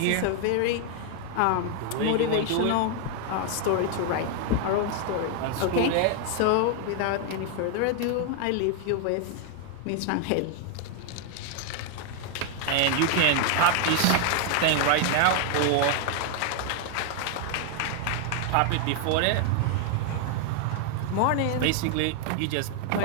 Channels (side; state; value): both; different; correlation 0.00